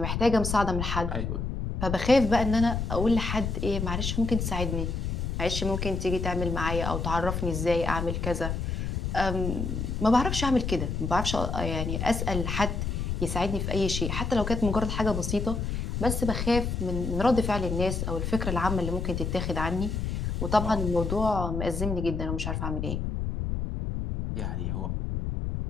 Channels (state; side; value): noise; left; rumble, 2 dB below the sound